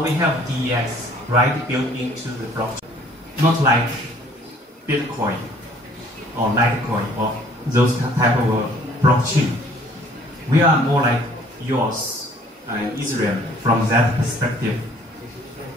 we have DEX, right, built into the blockchain. Not like Bitcoin or Litecoin or those type of blockchain. We are more like yours and Israel from that perspective.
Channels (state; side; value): normal; both; correlation 0.57